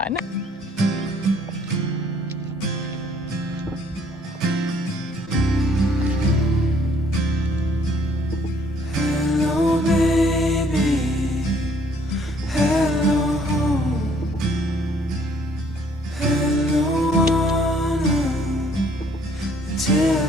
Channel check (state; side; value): normal; both; correlation 0.62